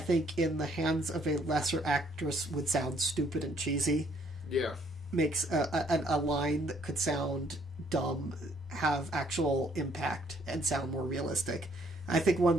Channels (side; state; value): both; normal; correlation 0.65